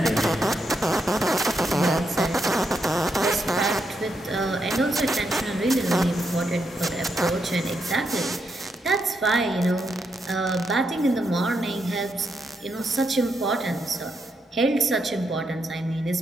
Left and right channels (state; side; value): normal; both; correlation 0.81